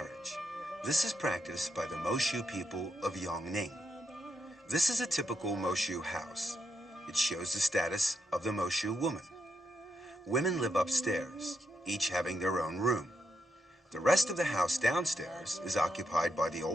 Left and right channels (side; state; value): both; normal; correlation 0.82